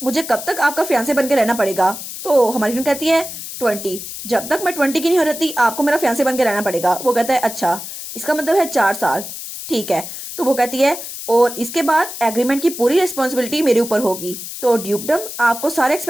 मुझे कब तक आपका फियांसे बन के रहना पड़ेगा। तो हमारी फ्रेंड कहती है 20, जब तक मैं 20 की नहीं हो रहती आपको मेरा फियांसे बन के रहना पड़ेगा। वो कहता है अच्छा, इसका मतलब है 4 साल, ठीक है। तो वो कहती है और इसके बाद एग्रीमेंट की पूरी रिस्पॉन्सिबिलिटी मेरे ऊपर होगी, तो ड्यूकडम आपको सारे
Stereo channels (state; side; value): noise; left; hiss, 9 dB below the sound